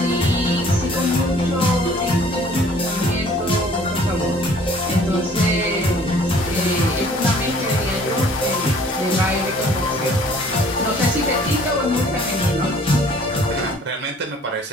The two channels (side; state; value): both; normal; correlation 0.54